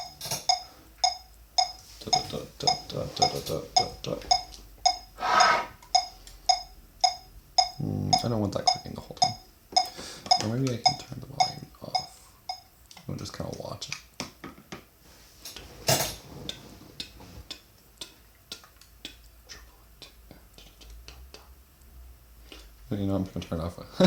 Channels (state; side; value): identical; both; correlation 1.00